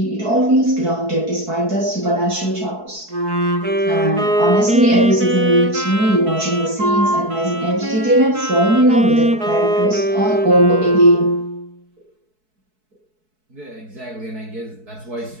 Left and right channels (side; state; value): left; late; 4.6 ms